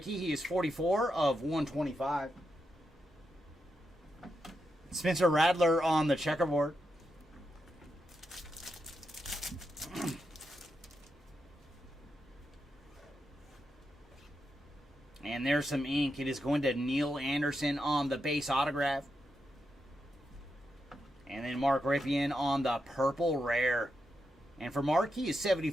he is 44 of 125. Spencer Radler on the checkerboard. And there's some ink. It is going to Neil Anderson on the base autograph. And then Mark Ripien on the purple rare. And for Mark, he is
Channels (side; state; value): both; normal; correlation 0.85